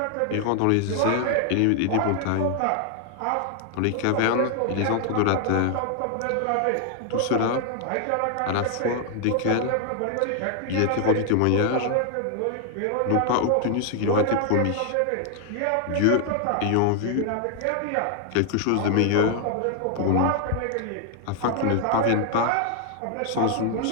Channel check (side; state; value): both; different; correlation 0.00